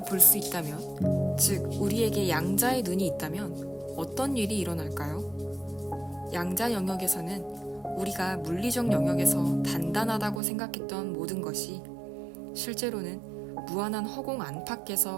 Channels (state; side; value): drops out; left; at 10.4 s